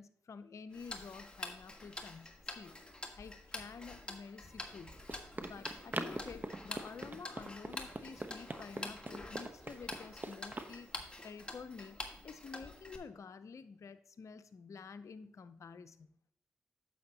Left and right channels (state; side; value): normal; both; correlation 0.63